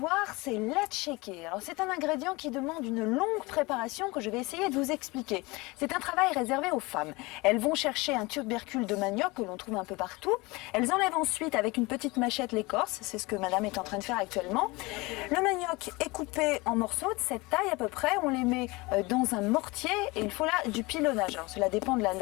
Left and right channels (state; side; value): quieter; right; 23.9 dB